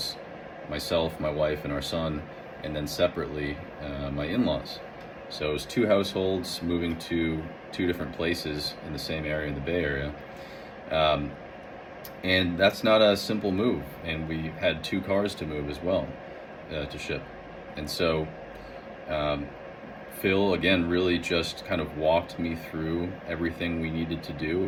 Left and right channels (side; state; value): both; identical; correlation 1.00